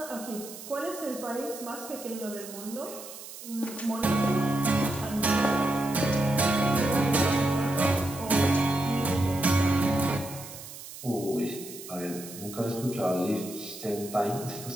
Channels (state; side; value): noise; right; hiss, 13 dB below the sound